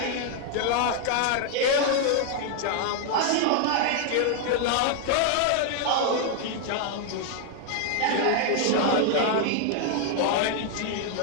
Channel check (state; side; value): different; both; correlation 0.00